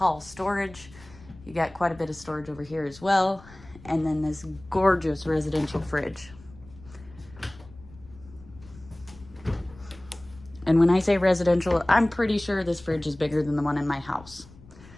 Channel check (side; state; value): left; noise; rumble, 21 dB below the sound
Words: storage. You got quite a bit of storage over here as well. And then this gorgeous residential fridge. And when I say residential, I'm pretty sure this fridge is bigger than the one in my house.